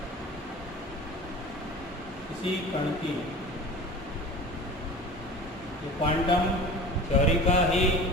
किसी कण की, ये क्वांटम थ्योरी का ही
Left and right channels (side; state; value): both; normal; correlation 0.37